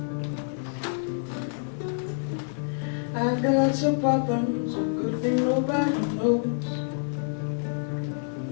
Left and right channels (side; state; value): right; silent; digital silence